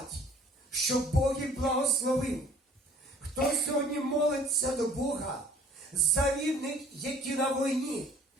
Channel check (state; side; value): normal; both; correlation 0.54